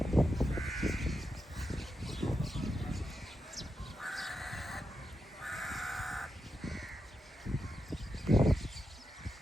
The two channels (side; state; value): both; normal; correlation 0.87